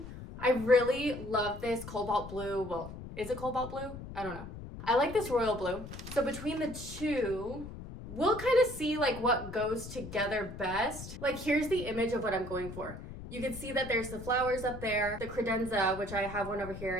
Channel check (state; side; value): noise; left; rumble, 11 dB below the sound